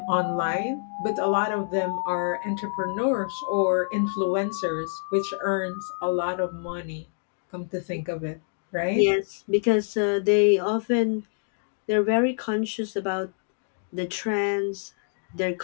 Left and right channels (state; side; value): silent; right; digital silence